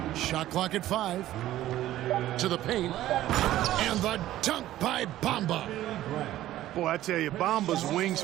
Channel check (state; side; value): quieter; left; 14.1 dB